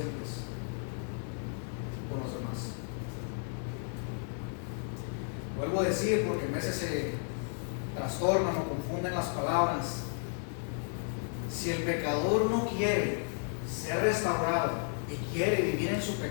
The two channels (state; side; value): silent; right; 56 dB below the other